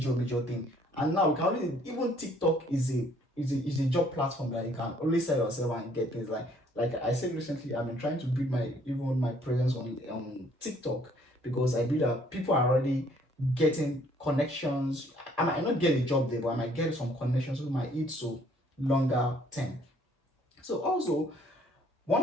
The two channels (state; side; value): normal; both; correlation 0.62